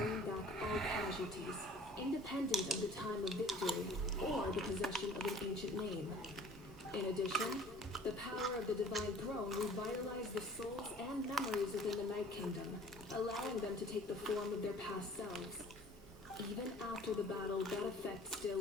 back all casualties, independent of the time of victory or the possession of an ancient name. In addition, the power of the Divine Throne revitalized the souls and memories within the Night Kingdom, allowing them to take the form of their past selves. Even after the battle, that effect still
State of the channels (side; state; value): both; normal; correlation 0.49